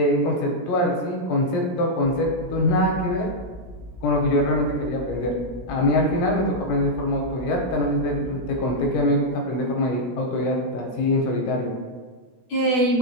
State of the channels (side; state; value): right; late; 17 ms